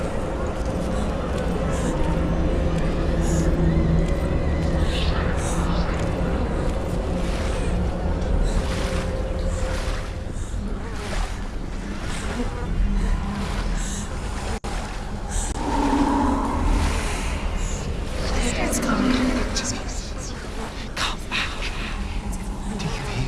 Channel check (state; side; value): identical; both; correlation 1.00